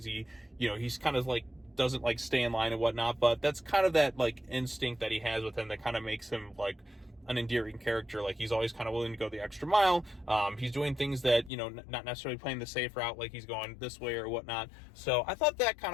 he's kind of like doesn't like stay in line and whatnot, but that's kind of that like instinct that he has with him that kind of makes him like an endearing character. Like he's always kind of willing to go the extra mile. He's doing things that, not necessarily playing the safe route, like he's going this way or whatnot. So I thought that kind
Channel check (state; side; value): drops out; right; at 11.5 s